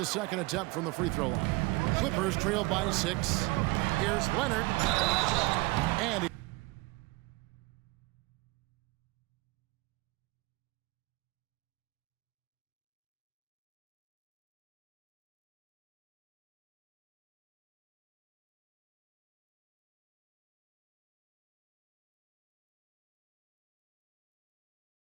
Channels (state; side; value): quieter; left; 23.6 dB